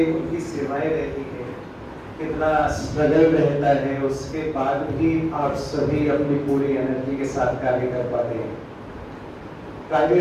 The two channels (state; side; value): identical; both; correlation 1.00